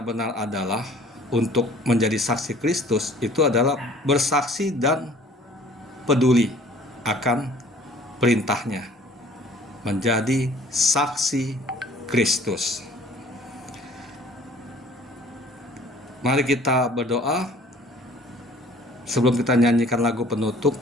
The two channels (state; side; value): normal; both; correlation 0.52